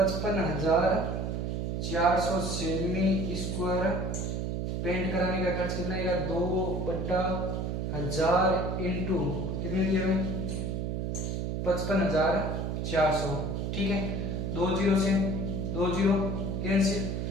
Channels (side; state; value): right; noise; hum, 1 dB below the sound